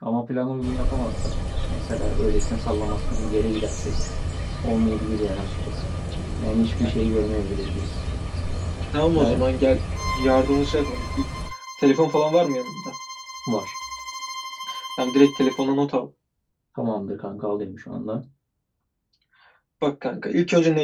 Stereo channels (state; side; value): identical; both; correlation 1.00